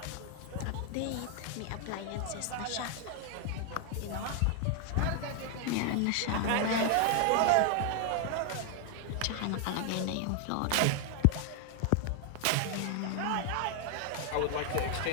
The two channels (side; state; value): both; different; correlation 0.00